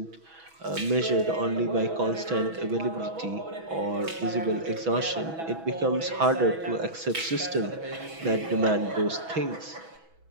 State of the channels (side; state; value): left; late; 6.1 ms